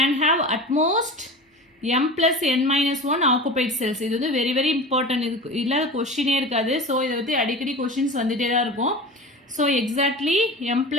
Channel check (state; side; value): normal; both; correlation 0.33